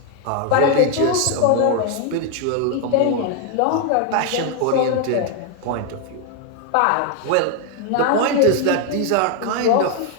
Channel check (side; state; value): both; different; correlation 0.01